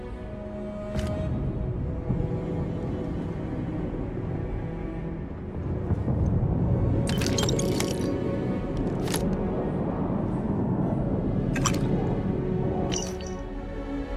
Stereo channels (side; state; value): both; identical; correlation 1.00